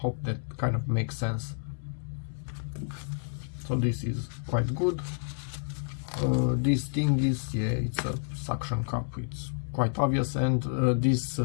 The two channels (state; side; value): silent; right; 58 dB below the other